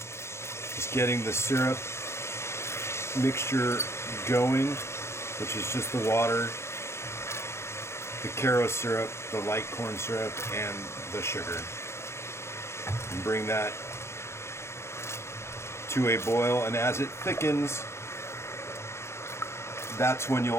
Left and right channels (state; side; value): late; right; 0.13 ms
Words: just getting the syrup mixture going, which is just the water, the Caro syrup, the light corn syrup, and the sugar. And bring that to a boil, and as it thickens, that's when